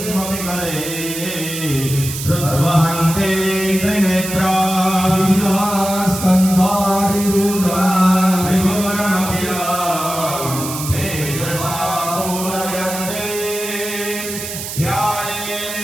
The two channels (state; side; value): noise; right; hiss, 7 dB below the sound